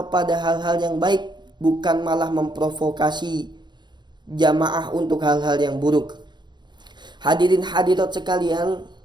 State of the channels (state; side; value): late; left; 0.22 ms